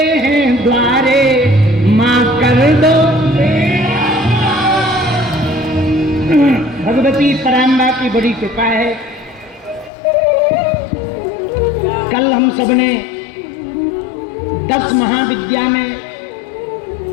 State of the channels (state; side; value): drops out; right; at 9.9 s